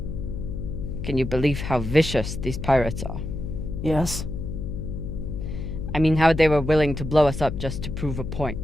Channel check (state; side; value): noise; left; hum, 5 dB below the sound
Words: Can you believe how vicious these pirates are? Yes. I mean, how they were willing to blow us up just to prove a point.